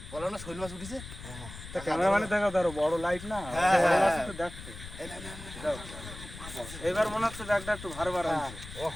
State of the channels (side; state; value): left; noise; rumble, 13 dB below the sound